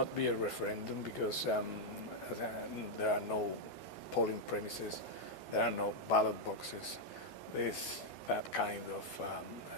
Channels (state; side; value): late; right; 2.6 ms